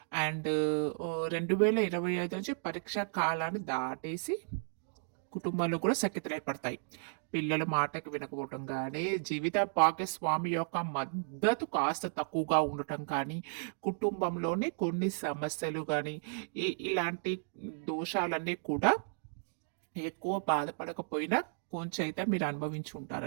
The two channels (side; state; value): left; silent; digital silence